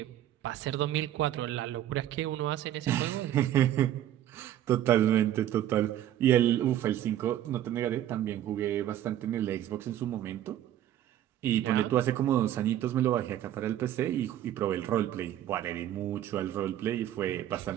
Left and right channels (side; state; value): left; quieter; 11.9 dB